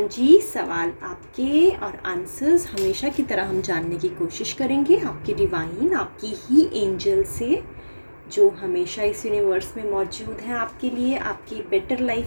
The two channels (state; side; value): inverted; both; correlation -1.00